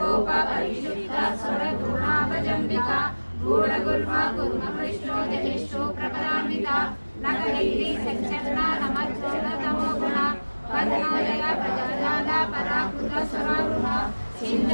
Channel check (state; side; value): inverted; both; correlation -1.00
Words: परिशुद्ध स्वरगुणाभजम्बिका गूढगुल्मा गुरुमकृष्णो जहिष्ठो प्रपदान्विता नखदैरी संचरण नमज्जन तमोगुण पद्मोदय प्रजाजाला पराकृत स्वरारुण